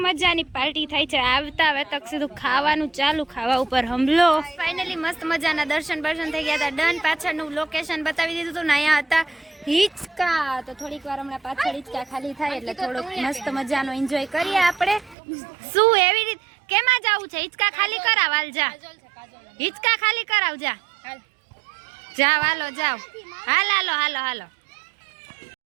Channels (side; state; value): left; drops out; at 15.2 s